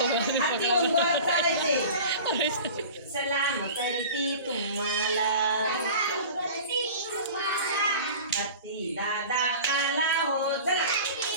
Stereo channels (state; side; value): inverted; both; correlation -0.38